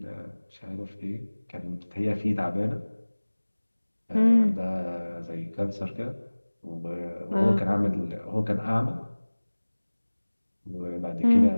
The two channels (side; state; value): both; inverted; correlation -1.00